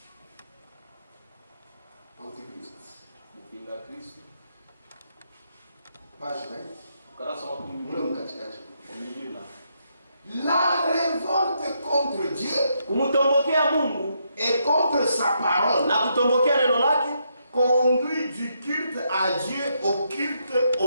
Antichrist. Kupinga Kristo. Page 20. La révolte contre Dieu et contre sa parole conduit du culte à Dieu au culte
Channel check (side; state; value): both; inverted; correlation -0.78